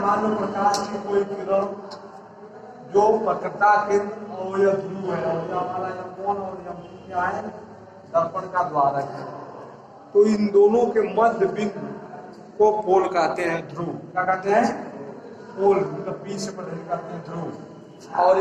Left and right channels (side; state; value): both; identical; correlation 1.00